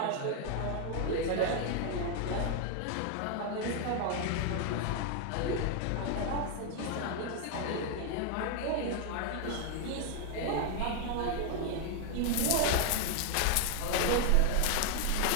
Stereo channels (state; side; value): different; both; correlation 0.00